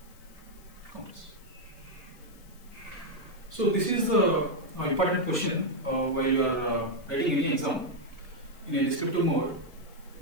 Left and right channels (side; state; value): left; noise; hiss, 26 dB below the sound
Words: counters. So this is the important question while you are writing any exam in a descriptive mode.